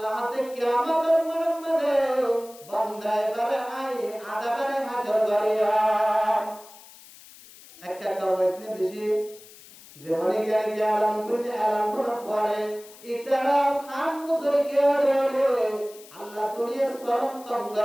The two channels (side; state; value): left; noise; hiss, 21 dB below the sound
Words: তে কিয়ামতের মধ্যে বান্দায়ে বারে আই আযাবের হাজর করিয়া একটা কাওয়াইতনে বেশি যেমন কি আলাম করার পরে ইতারা খান মুসরিকে রে আল্লাহ দুনিয়া সরম